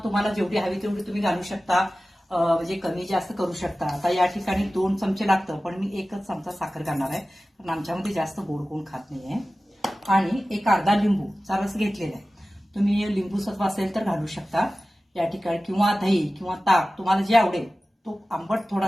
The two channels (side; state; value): both; normal; correlation 0.96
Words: तुम्हाला जेवढी हवी तेवढी तुम्ही घालू शकता, म्हणजे कमी जास्त करू शकता. आता या ठिकाणी 2 चमचे लागतं, पण मी 1च चमचा साखर घालणार आहे, कारण आमच्यामध्ये जास्त गोड कोण खात नाहीये. आणि एक अर्धा लिंबूचा रस घेतलेला आहे. तुम्ही लिंबू सत्व असेल तर घालू शकता या ठिकाणी, किंवा दही किंवा ताक, तुम्हाला जे आवडेल तो आंबट